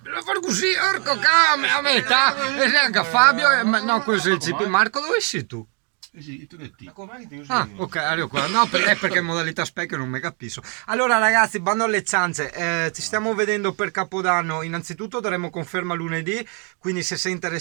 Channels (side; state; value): left; quieter; 37.9 dB